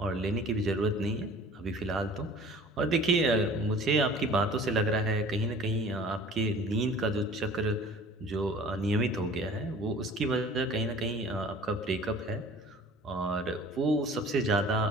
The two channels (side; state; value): both; normal; correlation 0.47